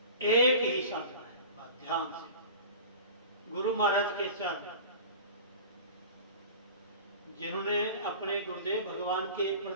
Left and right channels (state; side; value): inverted; both; correlation -0.38